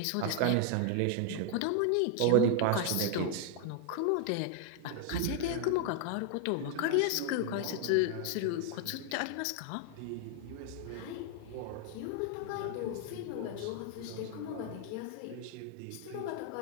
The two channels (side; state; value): both; different; correlation 0.00